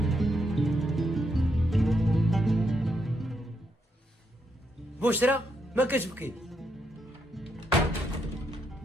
بشرى ما كتبكي؟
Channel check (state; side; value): normal; both; correlation 0.80